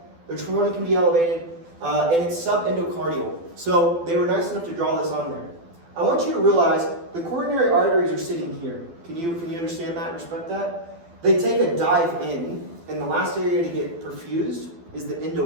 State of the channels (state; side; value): late; left; 12 ms